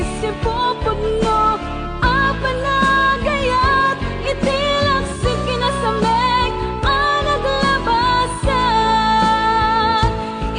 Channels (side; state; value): both; identical; correlation 1.00